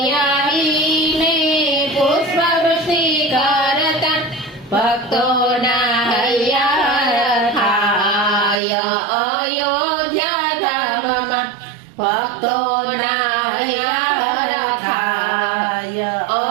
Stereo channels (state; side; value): drops out; left; at 8.6 s